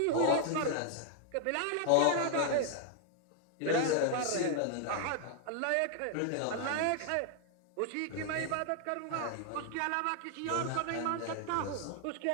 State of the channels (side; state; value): both; different; correlation 0.00